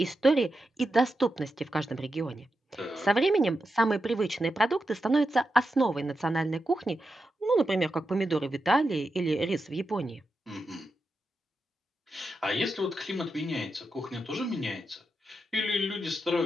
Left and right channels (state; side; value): normal; both; correlation 0.88